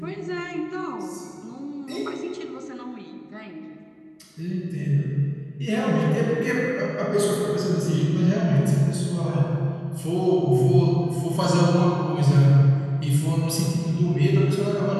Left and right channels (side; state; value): both; identical; correlation 1.00